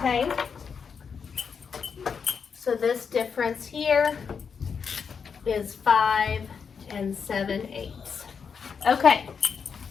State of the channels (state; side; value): quieter; right; 6.2 dB